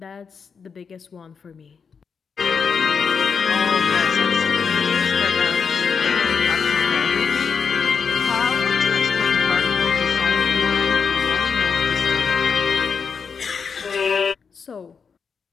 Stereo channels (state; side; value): quieter; right; 6.0 dB